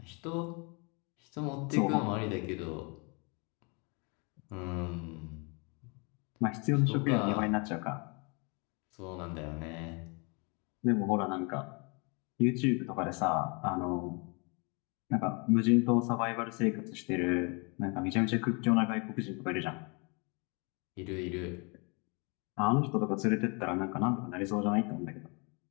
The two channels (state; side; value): quieter; right; 32.3 dB